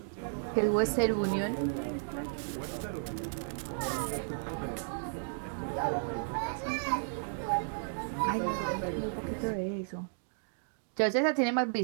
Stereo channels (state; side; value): silent; left; digital silence